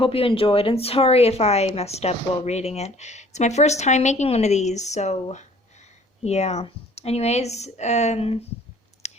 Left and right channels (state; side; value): normal; both; correlation 0.54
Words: you enjoyed, and sorry if I messed up while reading it. It's my first time making one of these, so yeah. Anyways,